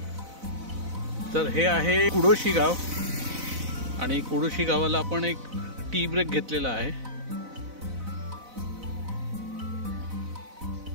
तर हे आहे कुडोशी गाव आणि कुडोशी गावाला आपण एक टी ब्रेक घेतलेला आहे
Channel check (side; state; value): left; late; 4.0 ms